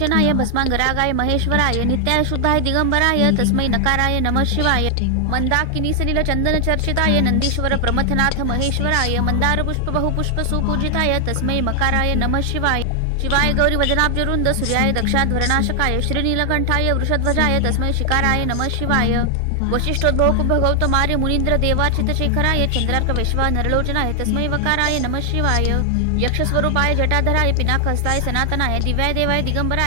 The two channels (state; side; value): different; both; correlation 0.00